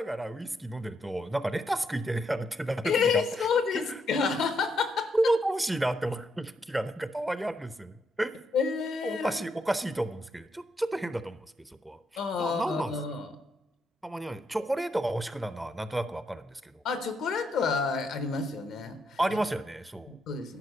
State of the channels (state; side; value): normal; both; correlation 0.79